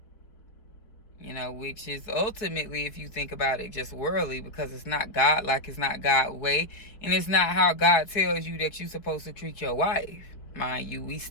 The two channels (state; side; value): late; right; 4.8 ms